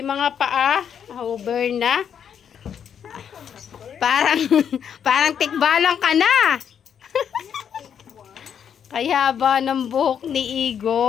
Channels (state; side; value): quieter; right; 8.2 dB